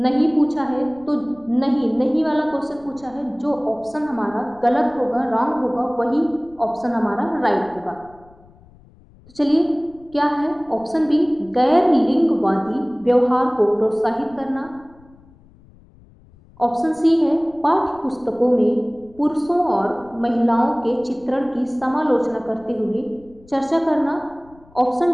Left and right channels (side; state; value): left; noise; rumble, 26 dB below the sound